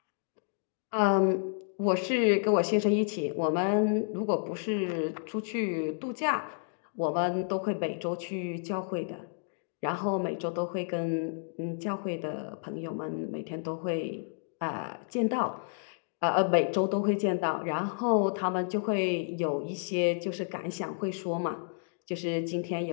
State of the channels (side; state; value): right; silent; digital silence